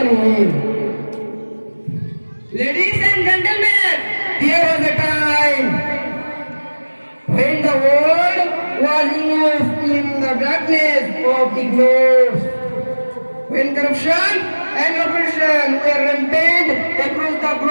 him. Ladies and gentlemen, there was a time when the world was immersed in the darkness of ignorance, when corruption and oppression were rampant across the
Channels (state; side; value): inverted; both; correlation -1.00